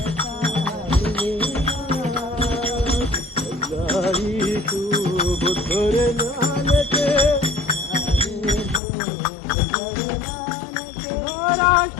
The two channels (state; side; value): drops out; right; at 8.8 s